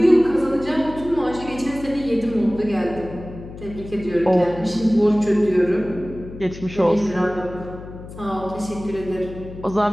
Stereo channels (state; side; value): noise; left; hum, 14 dB below the sound